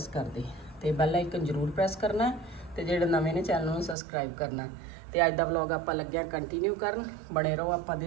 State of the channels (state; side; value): drops out; left; at 4.0 s